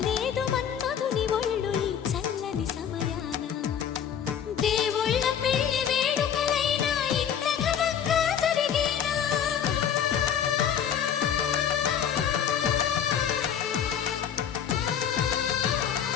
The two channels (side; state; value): right; quieter; 8.6 dB